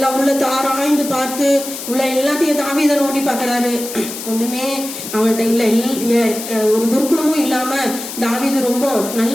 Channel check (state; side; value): noise; left; hiss, 9 dB below the sound